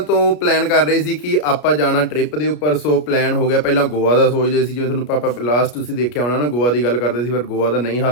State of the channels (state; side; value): late; right; 33 ms